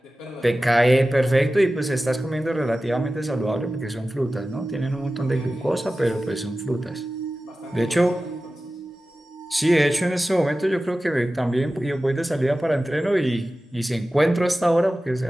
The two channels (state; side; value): normal; both; correlation 0.95